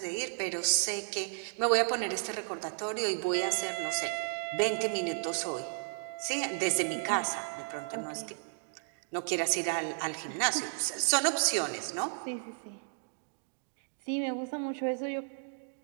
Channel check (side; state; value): left; silent; digital silence